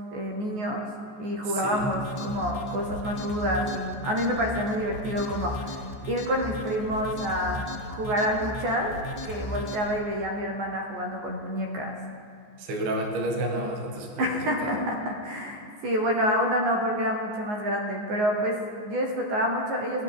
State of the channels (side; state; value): left; late; 14 ms